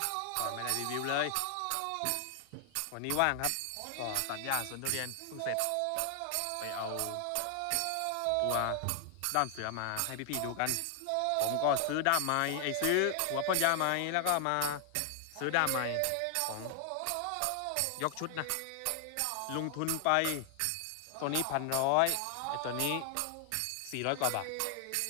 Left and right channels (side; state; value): both; different; correlation 0.00